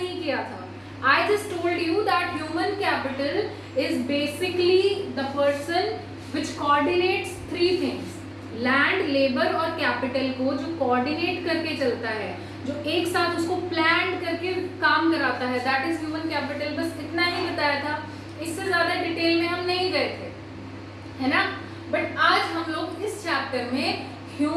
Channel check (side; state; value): both; identical; correlation 1.00